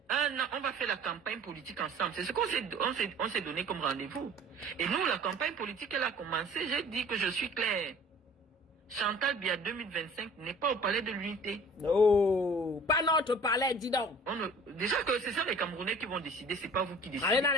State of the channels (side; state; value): both; normal; correlation 0.47